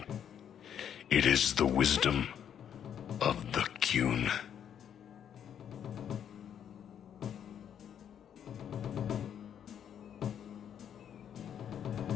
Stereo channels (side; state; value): right; quieter; 9.0 dB